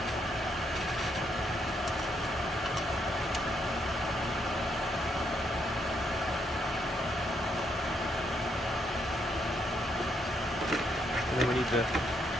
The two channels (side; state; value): both; normal; correlation 0.75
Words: And then we need to